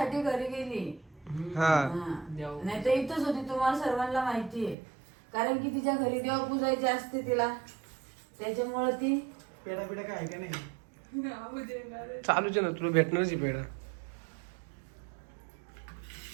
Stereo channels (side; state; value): left; drops out; at 4.8 s